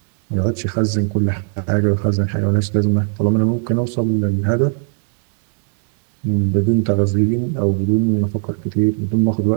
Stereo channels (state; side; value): silent; left; 56 dB below the other